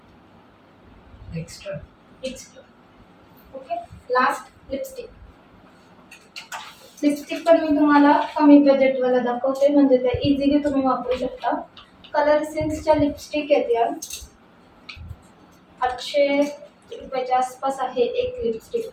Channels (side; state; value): both; identical; correlation 1.00